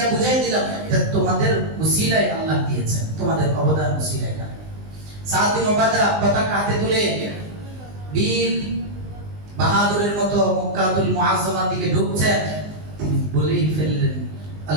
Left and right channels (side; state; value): left; late; 19 ms